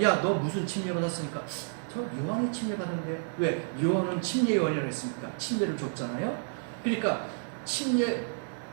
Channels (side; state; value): left; silent; 58 dB below the other